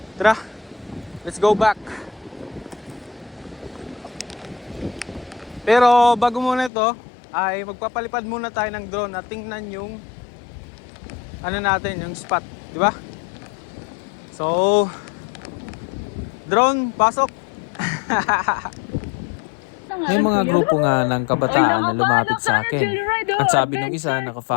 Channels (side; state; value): right; drops out; at 6.7 s